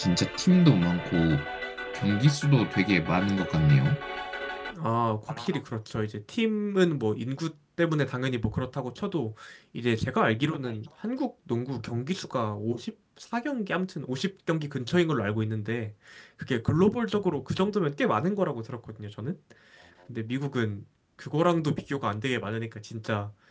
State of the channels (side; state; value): both; identical; correlation 1.00